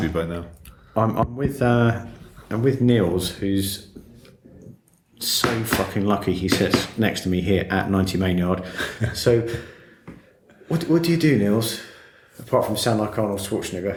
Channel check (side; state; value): both; identical; correlation 1.00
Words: be by now. I'm with Niels, who's so fucking lucky he sits next to me here at 90 Mainyard. So, what do you do, Niels? Apart from sound like Arnold